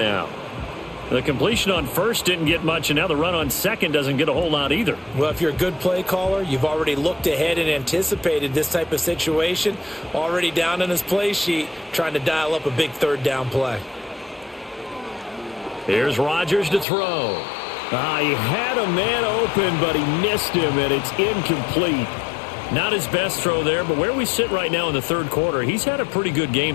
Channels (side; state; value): right; drops out; at 16.9 s